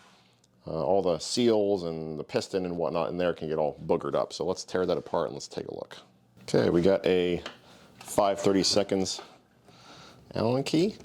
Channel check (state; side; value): identical; both; correlation 1.00